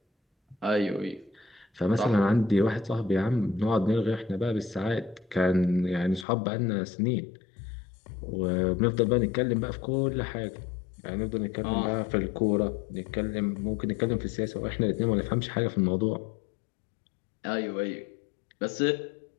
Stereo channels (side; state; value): right; drops out; at 6.2 s